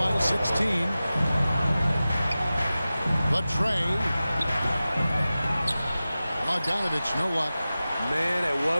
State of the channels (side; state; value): both; inverted; correlation -0.95